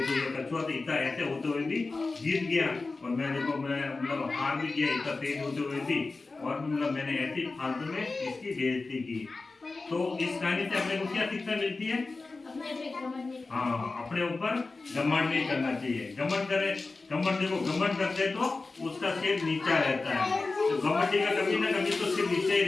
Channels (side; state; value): right; quieter; 3.7 dB